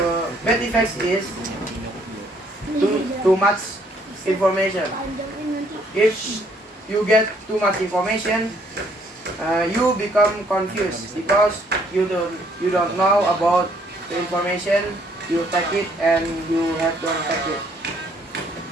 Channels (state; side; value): normal; both; correlation 0.66